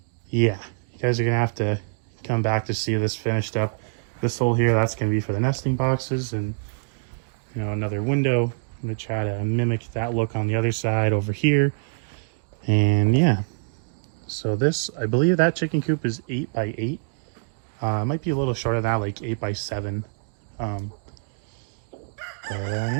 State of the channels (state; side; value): silent; left; digital silence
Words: you guys are gonna have to come back to see this finished up. This hole here, that's gonna be for the nesting boxes, and you know, another window. I'm gonna try to mimic that look on the other side over here. And yeah, so this, I believe that chicken coop is 8 by 8. It might be a little shorter than that, like 8 by 7.